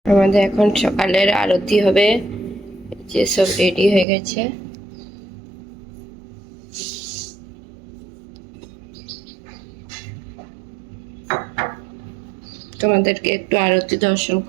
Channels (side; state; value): left; drops out; at 4.0 s